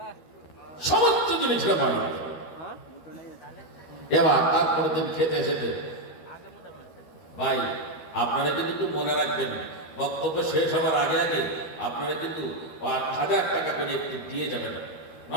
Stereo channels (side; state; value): right; late; 12 ms